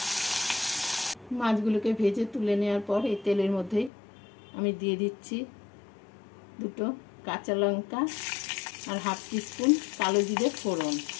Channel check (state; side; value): drops out; right; at 3.9 s